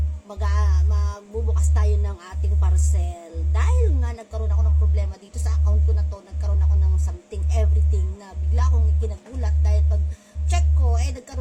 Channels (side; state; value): both; identical; correlation 1.00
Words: magbubukas tayo ng ating parcel. Dahil nga nagkaroon ako ng problema dito sa account ko na to, nagkaroon ako ng something, everything na bigla akong ikinagulat dahil pag check ko,